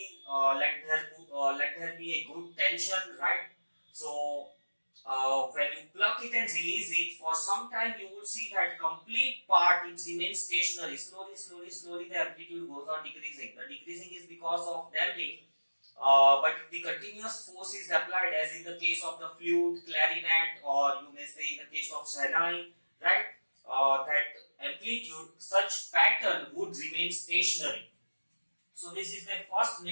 let there be a good tension, right. So when you pluck it and release it, for some time you will see that complete part it remains stationary. Slowly the amplitude goes on decreasing. The decreasing is because of damping. But if the continuous force is applied, as in the case of the flute, clarinet, or you may say in the case of Shahnayi, right, that amplitude, such pattern would remain stationary. So this is the first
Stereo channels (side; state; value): both; inverted; correlation -1.00